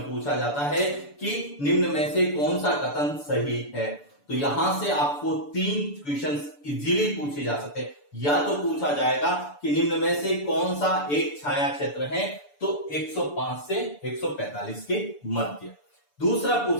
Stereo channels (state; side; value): late; right; 6.9 ms